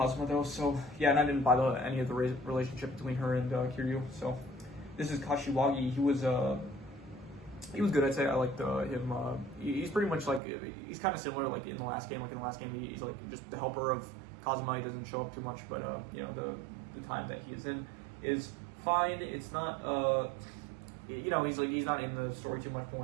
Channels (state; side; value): drops out; left; at 10.4 s